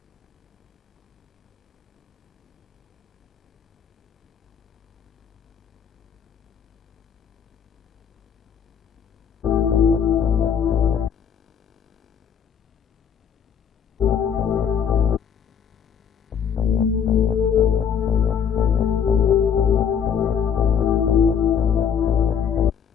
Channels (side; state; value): right; quieter; 7.6 dB